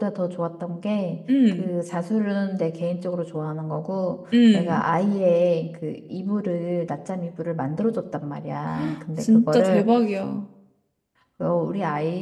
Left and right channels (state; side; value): identical; both; correlation 1.00